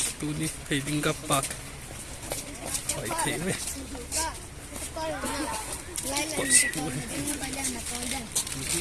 tu ni thei ding ka pak hoi thei ve pot tu he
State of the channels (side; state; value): both; identical; correlation 1.00